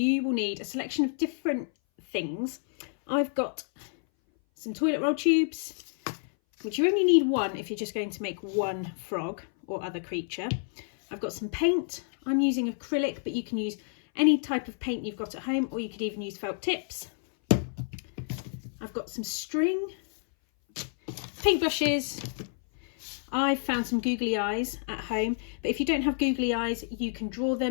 will need a selection of different things. I've got some toilet roll tubes, which you only need one if you're just going to make one frog or other creature. I've got some paint. I'm using acrylic, but you can use any type of paint you've got at home, or you could even use felt tips. I've got some string, paintbrushes. I've found some googly eyes at home, but if you don't have googly eyes, you can draw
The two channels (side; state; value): right; silent; 58 dB below the other